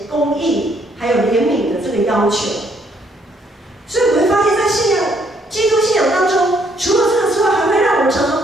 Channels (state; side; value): normal; both; correlation 0.69